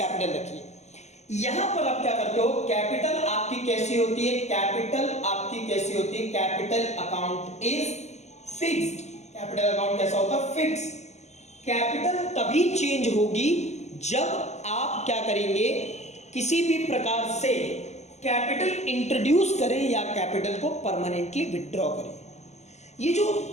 रखिए। यहां पर आप क्या करते हो, कैपिटल आपकी कैसी होती है, कैपिटल आपकी कैसी होती है, capital account is fixed, capital account कैसा होता है, फिक्स। कैपिटल तभी चेंज होगी जब आप क्या करेंगे, किसी भी प्रकार से कैपिटल इंट्रोड्यूस करें या कैपिटल को परमानेंटली विथड्रॉ करें। ये जो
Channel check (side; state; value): right; late; 0.33 ms